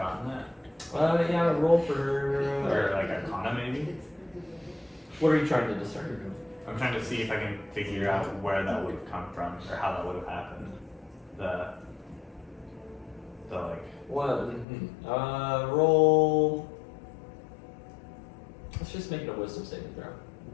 that? Yeah, roll for. Or like Arcana maybe? What are you trying to discern? I'm trying to see if I can figure out where that would have come from or how that would have happened. the like. What? Roll. Let's just make it a wisdom saving throw.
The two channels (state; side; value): drops out; right; at 14.7 s